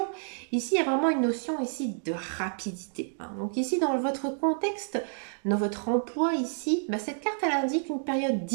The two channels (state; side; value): silent; left; digital silence